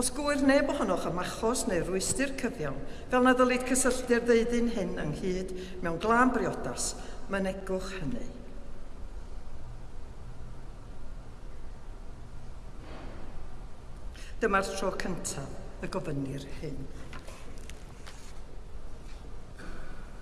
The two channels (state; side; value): identical; both; correlation 1.00